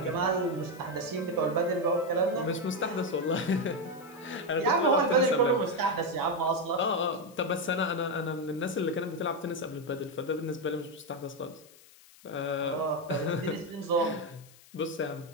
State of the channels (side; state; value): left; noise; hiss, 24 dB below the sound